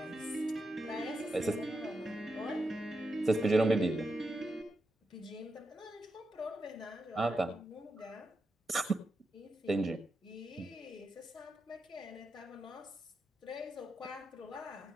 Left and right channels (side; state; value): both; normal; correlation 0.87